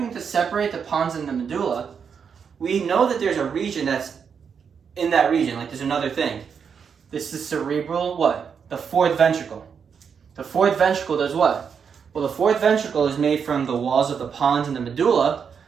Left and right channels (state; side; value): quieter; left; 6.7 dB